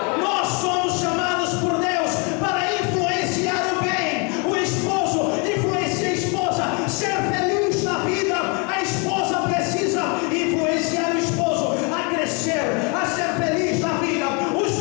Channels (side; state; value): right; quieter; 32.8 dB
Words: Nós somos chamados por Deus para influenciar o bem. O esposo influencia a esposa, ser feliz na vida. A esposa precisa influenciar o esposo a crescer, a ser feliz na vida. Os